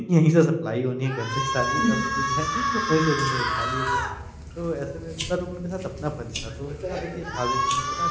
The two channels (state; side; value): identical; both; correlation 1.00